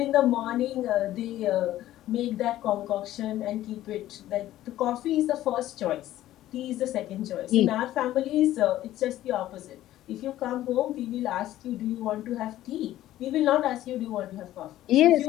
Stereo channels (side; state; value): right; quieter; 14.0 dB